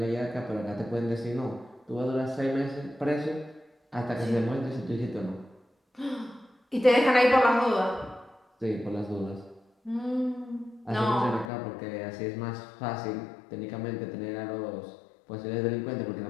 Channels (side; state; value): right; drops out; at 11.5 s